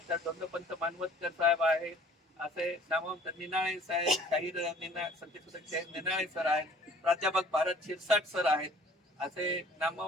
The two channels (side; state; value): both; normal; correlation 0.53